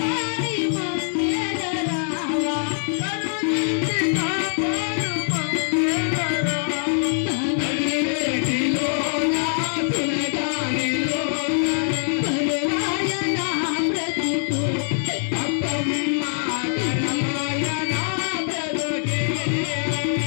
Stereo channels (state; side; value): silent; right; 60 dB below the other